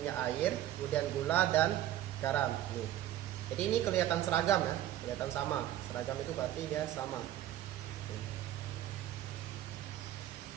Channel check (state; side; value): quieter; left; 12.9 dB